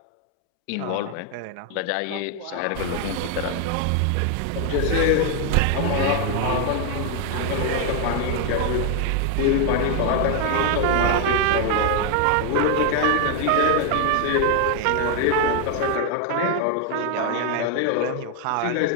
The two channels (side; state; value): both; different; correlation 0.01